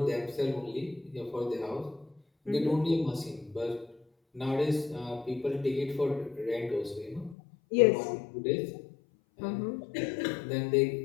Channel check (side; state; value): right; drops out; at 7.4 s